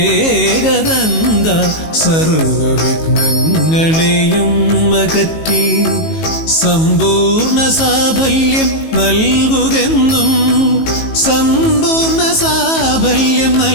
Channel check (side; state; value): right; late; 18 ms